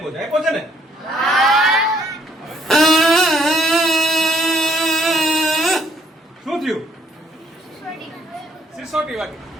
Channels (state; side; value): normal; both; correlation 0.66